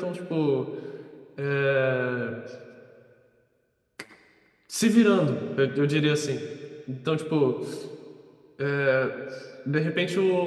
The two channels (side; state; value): both; identical; correlation 1.00